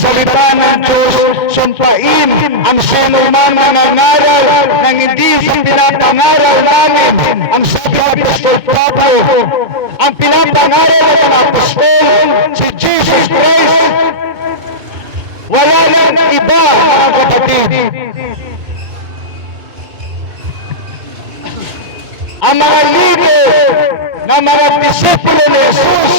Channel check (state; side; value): late; left; 2.2 ms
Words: ng Diyos, sumpain ang sinuman na nangaral ng hindi sa pinapangaral namin. Ang sabi ng Apostol Pablo, ang pinapangaral ng Apostol, si Jesus Christ, wala lang iba, mga kapatid. Ang mga lider na mga disipulo ni